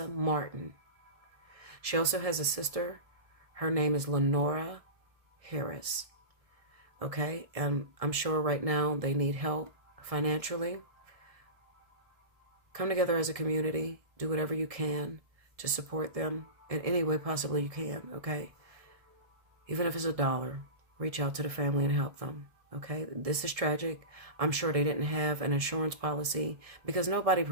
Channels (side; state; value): left; late; 1.7 ms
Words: Martin. She also has a sister. Her name is Lenora Harris. Okay? And I'm sure right now they need help financially. Come together as a community. Do whatever you can to support them in any way possibly you can. Okay? Even if it's $1, reach out to the family and help them. Okay, this is tragic. I'm sure they didn't have an insurance policy, because nobody